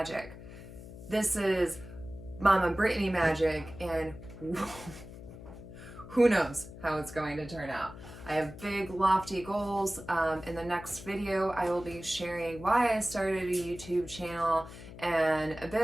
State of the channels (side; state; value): left; noise; hum, 15 dB below the sound